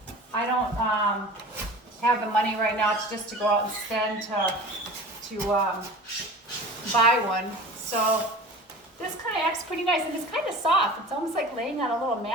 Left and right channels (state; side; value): normal; both; correlation 0.38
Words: have the money right now to go out and spend to buy one. So this kind of acts pretty nice, and it's kind of soft. It's almost like laying on a little